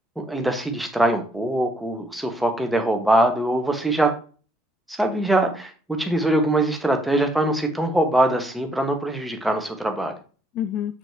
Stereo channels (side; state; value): both; normal; correlation 0.69